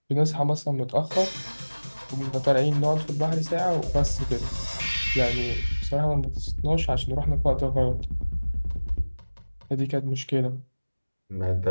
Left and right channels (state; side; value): inverted; both; correlation -1.00